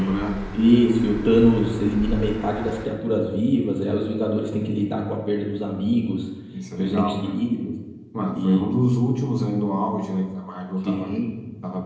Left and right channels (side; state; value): both; identical; correlation 1.00